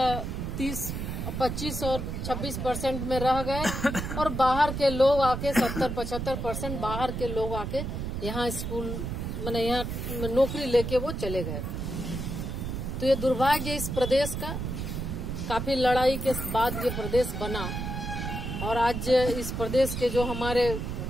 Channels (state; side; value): noise; right; rumble, 4 dB below the sound